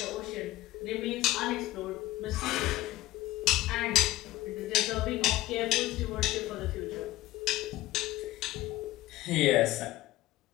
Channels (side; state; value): right; quieter; 17.3 dB